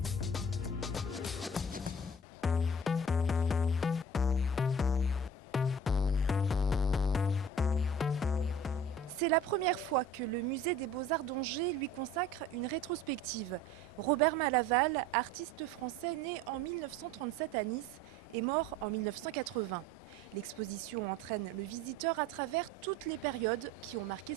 C'est la première fois que le musée des Beaux-Arts d'Angers lui consacre une rétrospective. Robert Malaval, artiste français né en 1937 à Nice et mort en 1980. L'exposition entraîne le visiteur à travers toutes les périodes qui ont marqué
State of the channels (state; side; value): normal; both; correlation 0.44